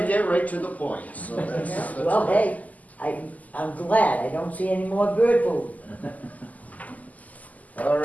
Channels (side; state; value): right; late; 0.077 ms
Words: get right to the point, so that's Well, good. hey, I'm glad I don't see any more bird food. All